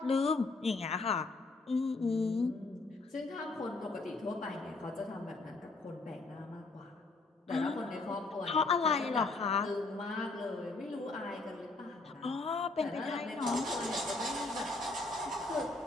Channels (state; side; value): quieter; right; 3.4 dB